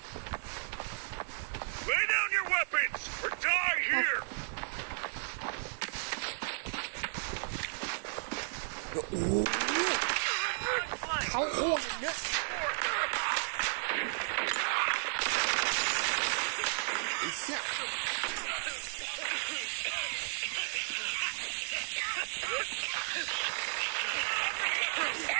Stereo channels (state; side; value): silent; left; digital silence